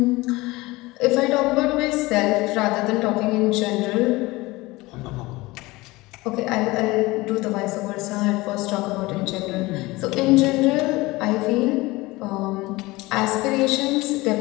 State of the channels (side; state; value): right; quieter; 21.0 dB